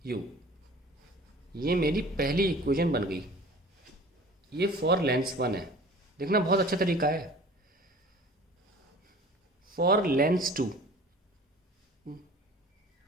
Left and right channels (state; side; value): normal; both; correlation 0.45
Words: u। ये मेरी पहली इक्वेशन बन गई। ये फॉर लेंस 1 है, देखना बहुत अच्छा तरीका है। For Lenz 2